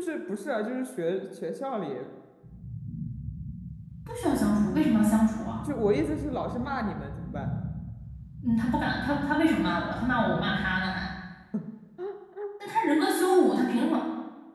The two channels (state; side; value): identical; both; correlation 1.00